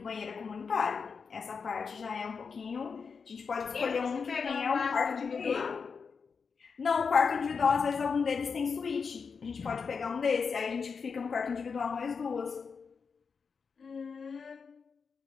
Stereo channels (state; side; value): quieter; right; 5.6 dB